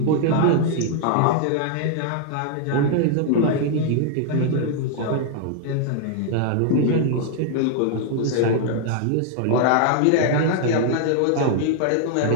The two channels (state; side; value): different; both; correlation 0.00